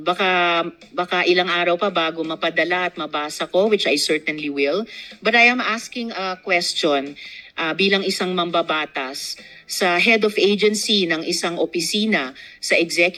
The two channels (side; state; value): both; identical; correlation 1.00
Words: Baka ilang araw pa bago mapadala at mabasa ko, which I certainly will. But I am asking a question bilang isang mambabatas sa head of agency ng isang opisina sa